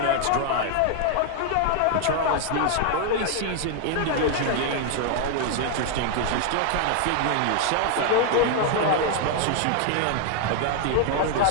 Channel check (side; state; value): both; different; correlation 0.00